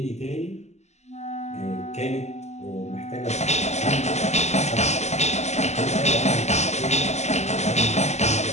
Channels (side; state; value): right; late; 0.33 ms